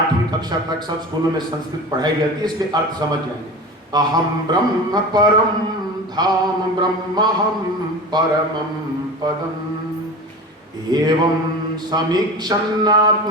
कक्षा तक सब स्कूलों में संस्कृत पढ़ाई जाती है, इसके अर्थ समझ जाएंगे। अहम ब्रह्म परम धाम ब्रह्महम परमं पदम एवं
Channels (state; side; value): normal; both; correlation 0.32